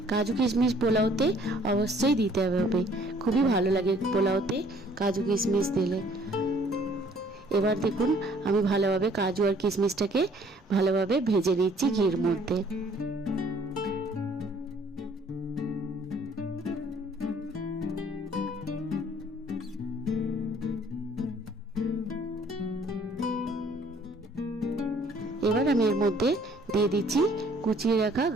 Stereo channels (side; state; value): both; normal; correlation 0.59